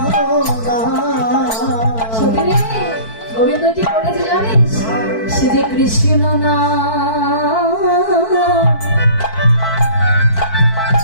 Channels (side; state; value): right; late; 4.6 ms